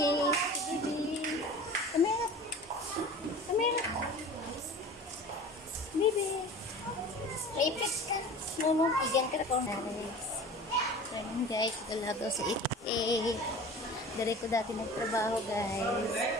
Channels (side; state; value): both; normal; correlation 0.39